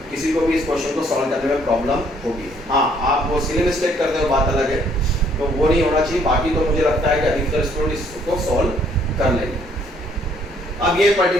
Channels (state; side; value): normal; both; correlation 0.64